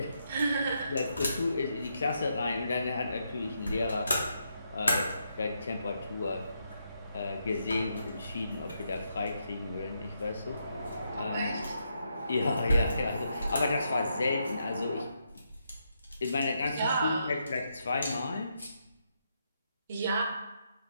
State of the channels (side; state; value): both; inverted; correlation -0.80